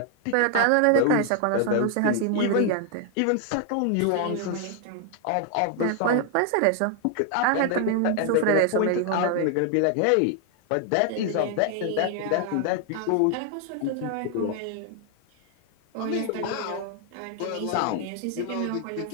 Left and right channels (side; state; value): both; different; correlation 0.00